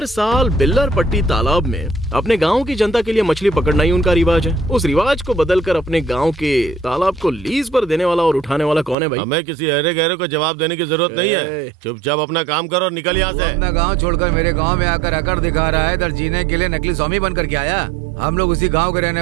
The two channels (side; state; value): left; drops out; at 9.0 s